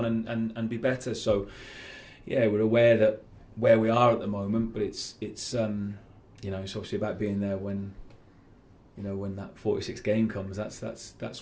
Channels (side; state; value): both; identical; correlation 1.00